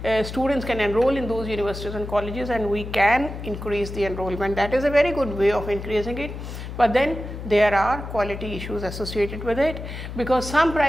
students can enroll in those universities and colleges and we can increase the enrollment. That is a very good way of increasing it. But then there are quality issues associated with it because some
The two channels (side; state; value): left; noise; hum, 9 dB below the sound